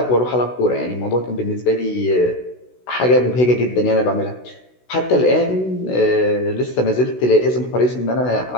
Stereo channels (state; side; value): late; right; 16 ms